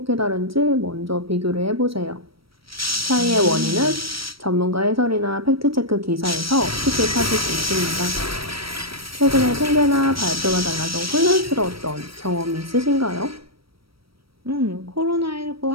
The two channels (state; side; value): late; left; 0.75 ms